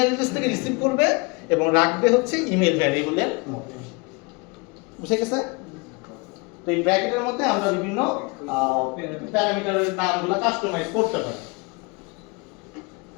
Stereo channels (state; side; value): quieter; right; 28.7 dB